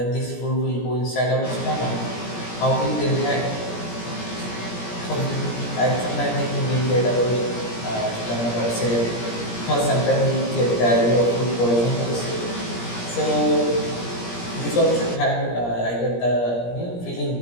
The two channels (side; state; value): right; late; 17 ms